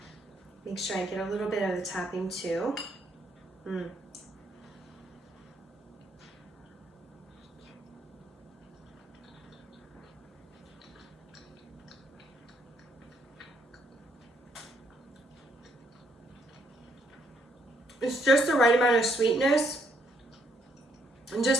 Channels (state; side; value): normal; both; correlation 0.71